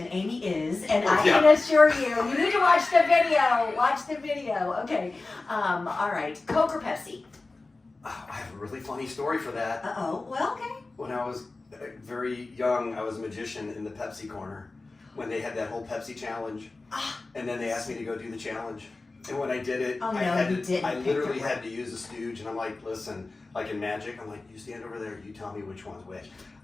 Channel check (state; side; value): quieter; right; 3.4 dB